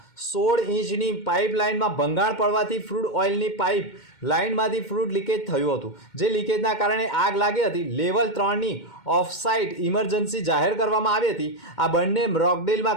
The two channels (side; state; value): right; late; 2.2 ms